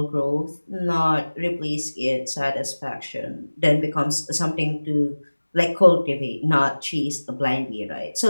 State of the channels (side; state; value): both; inverted; correlation -1.00